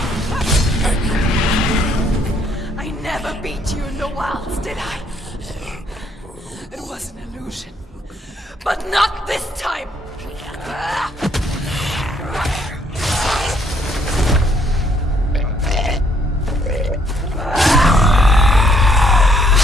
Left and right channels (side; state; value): both; normal; correlation 0.68